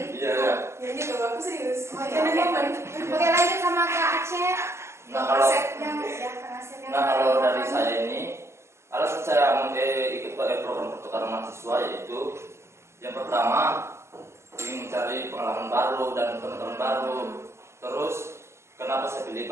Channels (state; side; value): late; left; 0.13 ms